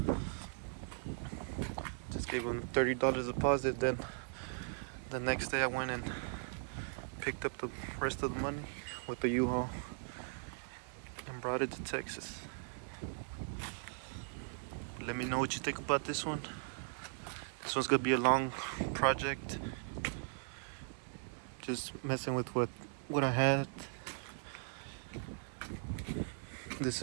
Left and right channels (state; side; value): silent; left; digital silence